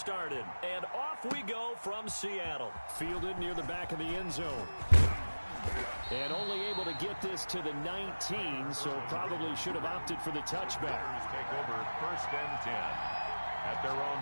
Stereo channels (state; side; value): inverted; both; correlation -1.00